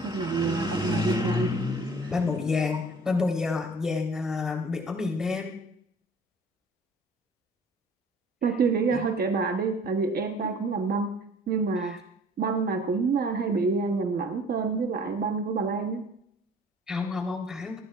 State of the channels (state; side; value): normal; both; correlation 0.51